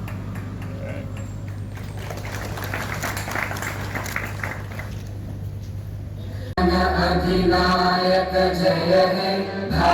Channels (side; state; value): both; identical; correlation 1.00